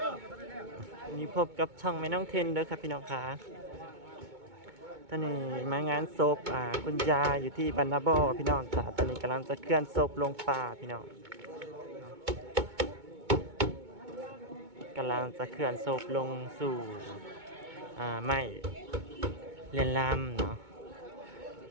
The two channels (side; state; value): left; late; 2.2 ms